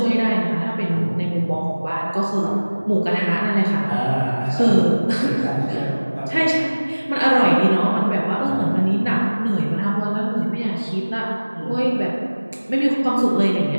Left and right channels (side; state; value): both; inverted; correlation -1.00